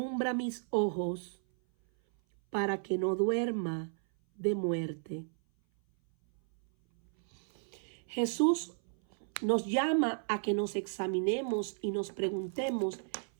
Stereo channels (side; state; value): left; silent; 55 dB below the other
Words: mis ojos para que no duerma de muerte. Jesús nos llama a que nos examinemos y nos preguntemos